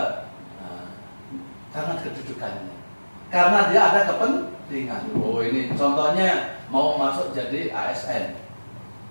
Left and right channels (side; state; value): both; inverted; correlation -1.00